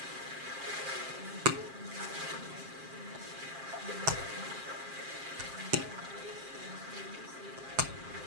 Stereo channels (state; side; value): late; left; 7.5 ms